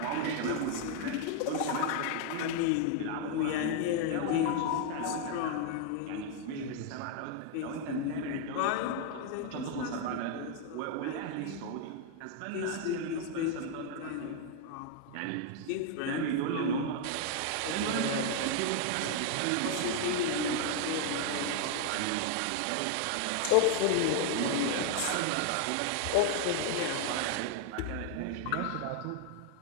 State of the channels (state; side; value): different; both; correlation 0.00